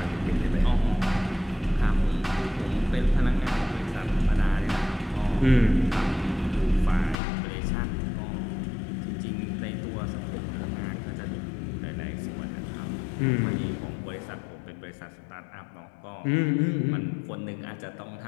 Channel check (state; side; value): drops out; right; at 7.2 s